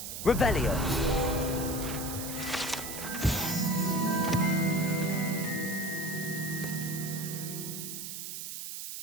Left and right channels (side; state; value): right; noise; hiss, 7 dB below the sound